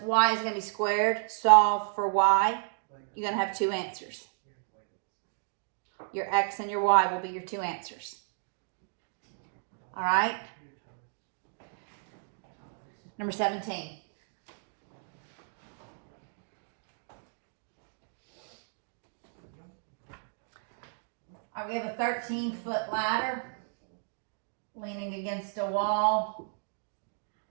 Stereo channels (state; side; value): silent; left; digital silence